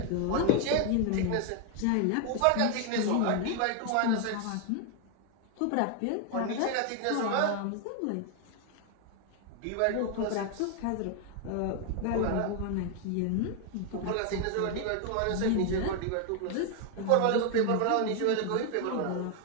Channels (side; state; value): both; different; correlation 0.01